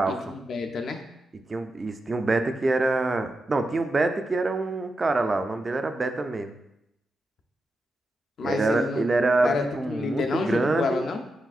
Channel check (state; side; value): normal; both; correlation 0.88